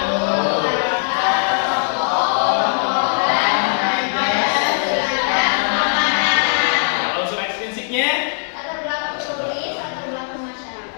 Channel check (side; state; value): right; silent; digital silence